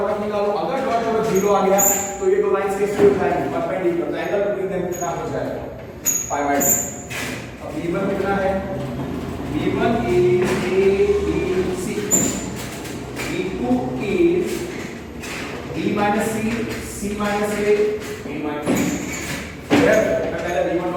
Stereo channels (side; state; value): both; identical; correlation 1.00